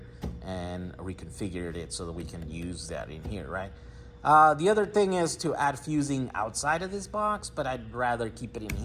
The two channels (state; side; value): identical; both; correlation 1.00